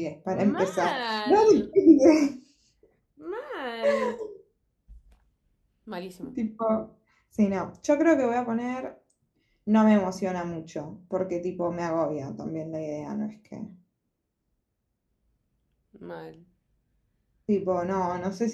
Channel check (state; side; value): identical; both; correlation 1.00